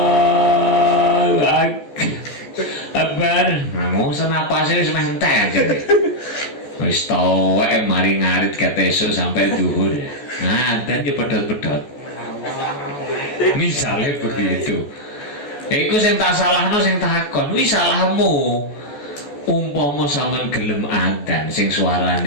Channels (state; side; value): late; right; 14 ms